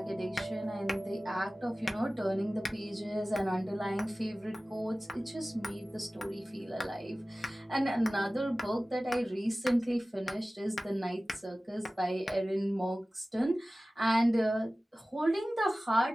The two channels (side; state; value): both; normal; correlation 0.97